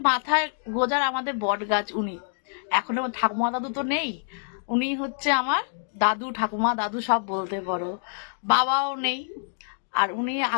মাথায় গোজার আমাদের বট গাছ। উনি এখন ঠাকুমা দাদু তো নেই, উনি হচ্ছে আমার দাদু, ঠাকুমা দাদু সব বলতে পারো। বাবাও নেই, আর উনি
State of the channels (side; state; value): right; silent; digital silence